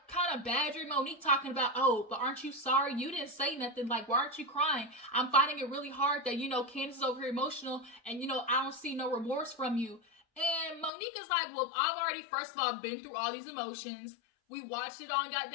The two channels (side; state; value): right; drops out; at 10.9 s